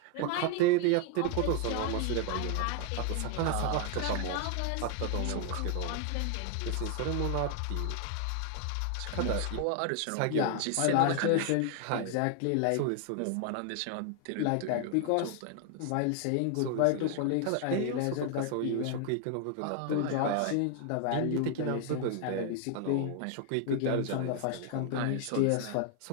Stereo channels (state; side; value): different; both; correlation 0.00